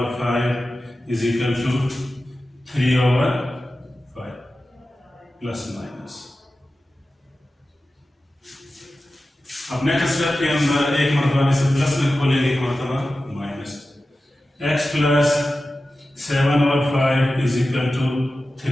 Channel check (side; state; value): both; normal; correlation 0.94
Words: is equal to 3/5 plus minus. अब नेक्स्ट स्टेप के अंदर एक मरतबा में से प्लस में खोलेंगे, एक मरतबा minus, x plus 7/5 is equal to